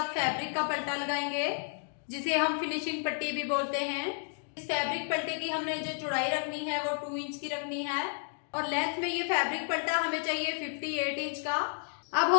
फैब्रिक का पल्टा लगाएंगे, जिसे हम फिनिशिंग पट्टी भी बोलते हैं। इस फैब्रिक पल्टे की हमने जो चौड़ाई रखनी है वो 2 इंच की रखनी है और लेंथ में ये फैब्रिक पल्टा हमें चाहिए 58 इंच का। अब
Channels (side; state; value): right; silent; 57 dB below the other